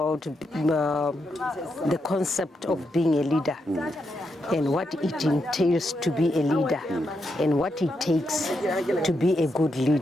the concept of being a leader and what it entails to be a leader and what it takes to be a good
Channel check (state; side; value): normal; both; correlation 0.83